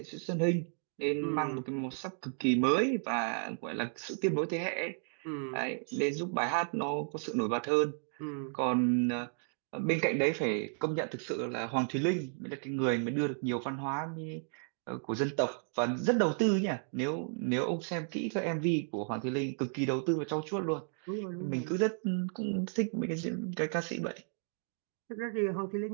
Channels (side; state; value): left; silent; 55 dB below the other